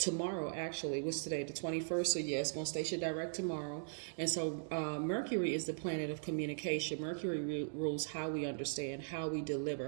Actually, what's today, the 21st? So yeah, it's going to station direct tomorrow. And so Mercury is the planet of communication. Mercury rules how we understand, how we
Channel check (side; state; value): left; silent; digital silence